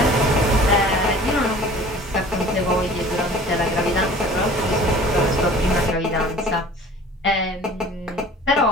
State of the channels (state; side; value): normal; both; correlation 0.46